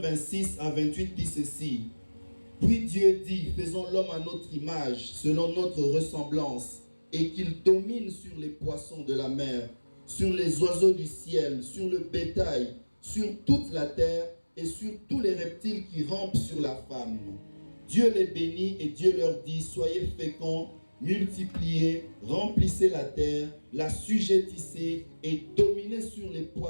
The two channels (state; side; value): inverted; both; correlation -1.00